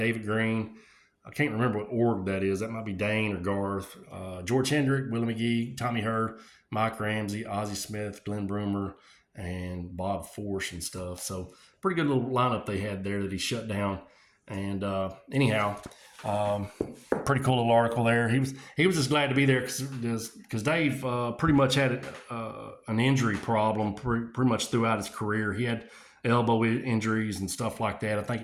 Green. I can't remember what org that is. That might be Dane or Garth. George Hendrick, Willie McGee, Tommy Hurd, Mike Ramsey, Ozzie Smith, Glenn Broomer, and Bob Force and stuff. So pretty good little lineup they had there that he shut down. And anyhow, pretty cool little article there. He was just glad to be there because Dave pretty much had an injury problem pretty much throughout his career. He had elbow injuries and stuff like that. I think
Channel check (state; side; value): identical; both; correlation 1.00